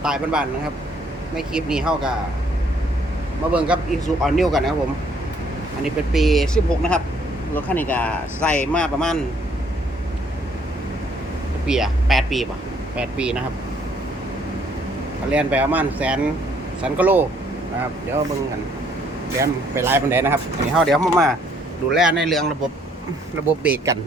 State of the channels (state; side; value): normal; both; correlation 0.65